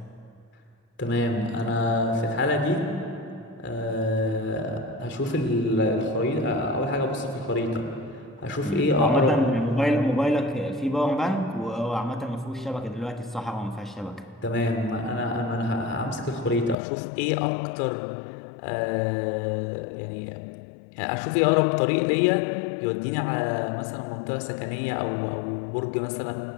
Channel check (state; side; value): drops out; right; at 16.8 s